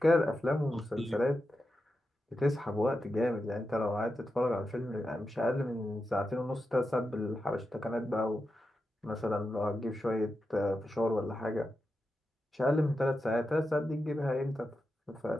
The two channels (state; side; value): normal; both; correlation 0.89